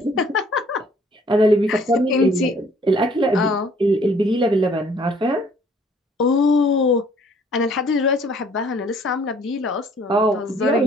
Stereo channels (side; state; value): both; normal; correlation 0.59